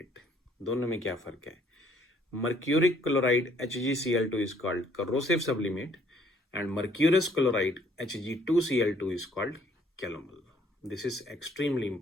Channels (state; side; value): normal; both; correlation 0.63